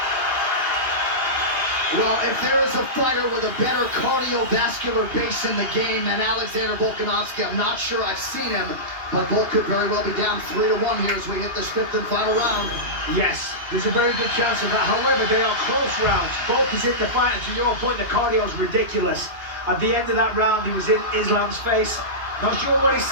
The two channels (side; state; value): left; late; 2.8 ms